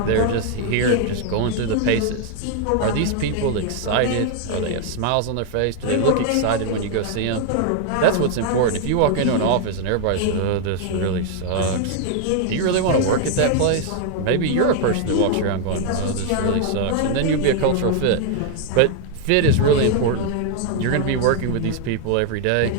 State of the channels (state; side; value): different; both; correlation 0.00